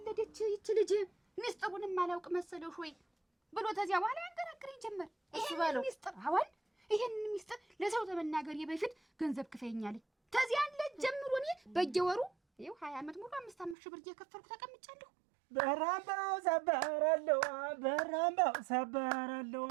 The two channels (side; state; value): left; drops out; at 13.8 s